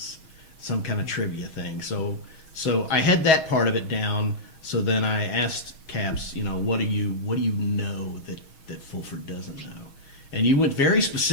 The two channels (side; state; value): right; late; 6.3 ms